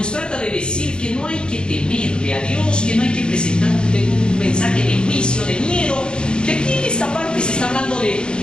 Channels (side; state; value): right; late; 0.051 ms